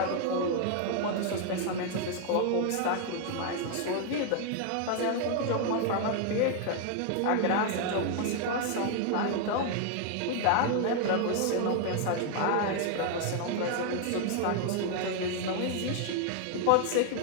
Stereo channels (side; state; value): both; different; correlation 0.00